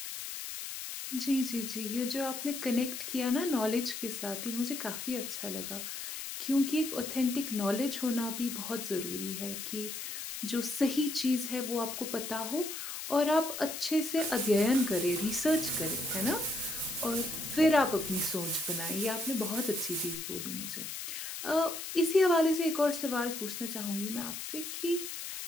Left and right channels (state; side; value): noise; left; hiss, 7 dB below the sound